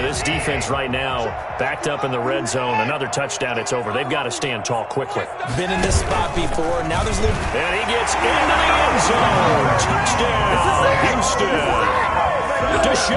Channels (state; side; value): identical; both; correlation 1.00